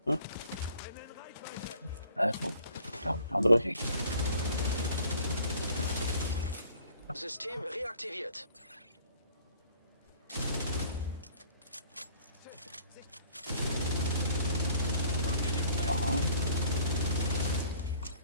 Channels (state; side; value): inverted; both; correlation -0.55